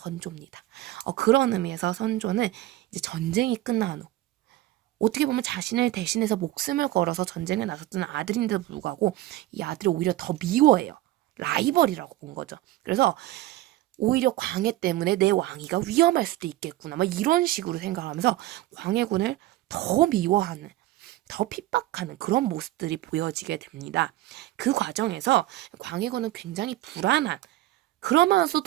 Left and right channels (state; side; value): quieter; left; 15.9 dB